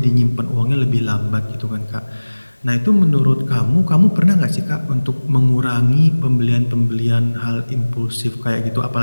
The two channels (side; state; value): both; inverted; correlation -1.00